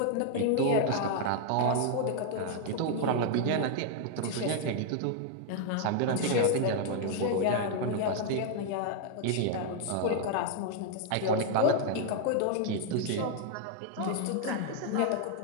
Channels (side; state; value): both; different; correlation 0.00